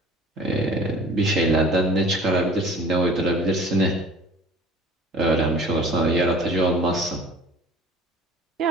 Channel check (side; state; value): both; normal; correlation 0.45